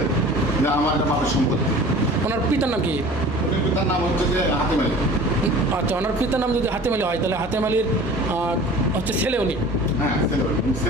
যে আমার একটা বাপের সম্পত্তি। ওনার পিতার নাম কি? উনি পিতার নাম হচ্ছে যে হাতেম আলী। আচ্ছা, ওনার পিতার নাম যদি হাতেম আলী হয় তাহলে হাতেম আলীর হচ্ছে ছেলে উনি? হ্যাঁ,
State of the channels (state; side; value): normal; both; correlation 0.43